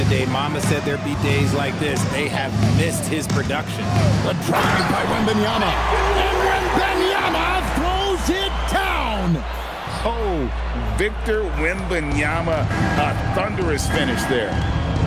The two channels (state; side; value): identical; both; correlation 1.00